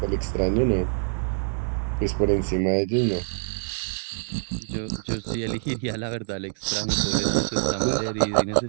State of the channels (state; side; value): silent; left; digital silence